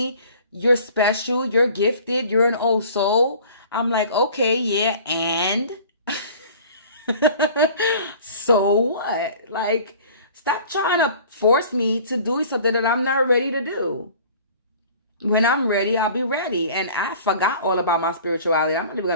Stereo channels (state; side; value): inverted; both; correlation -0.47